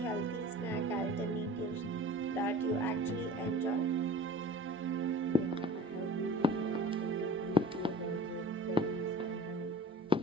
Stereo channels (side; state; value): both; normal; correlation 0.41